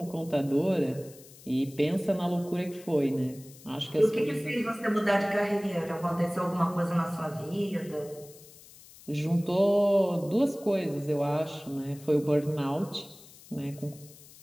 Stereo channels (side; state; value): left; noise; hiss, 21 dB below the sound